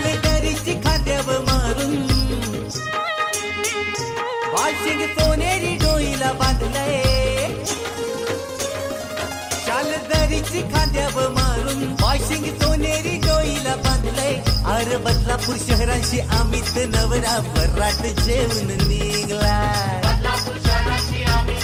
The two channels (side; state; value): both; identical; correlation 1.00